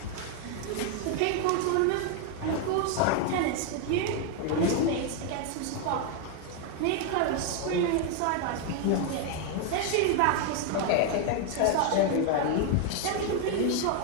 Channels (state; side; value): different; both; correlation 0.01